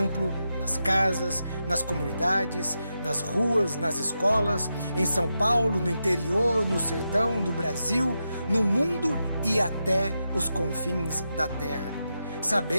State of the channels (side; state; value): both; inverted; correlation -0.87